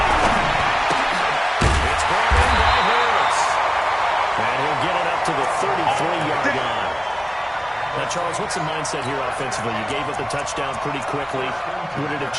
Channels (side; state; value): both; identical; correlation 1.00